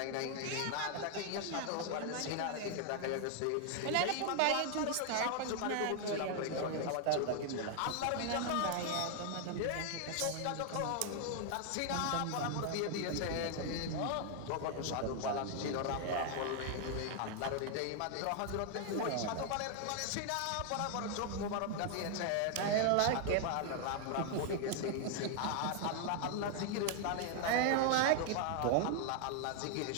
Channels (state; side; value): different; both; correlation 0.00